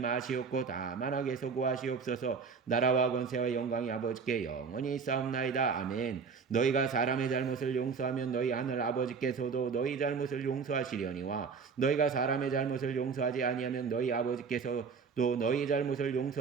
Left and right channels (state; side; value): quieter; left; 5.5 dB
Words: 다만 악에서 구하시옵소서. 나라와 권세와 영광이 아버지께 영원히 있사옵나이다. 아멘. 너희가 사람의 잘못을 용서하면 너희 하늘 아버지께서도 너희 잘못을 용서하시려니와 너희가 사람의 잘못을 용서하지 아니하면 너희 아버지께서도 너희 잘못을